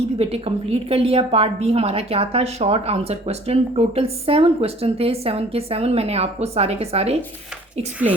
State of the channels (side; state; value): both; normal; correlation 0.52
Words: भी बेटे कंप्लीट कर लिया। पार्ट बी हमारा क्या था, short answer question. Total 7 question थे, 7 के 7 मैंने आपको सारे के सारे